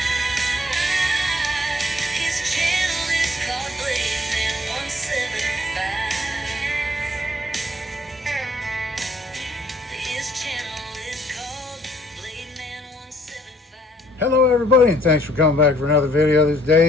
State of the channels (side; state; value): both; normal; correlation 0.63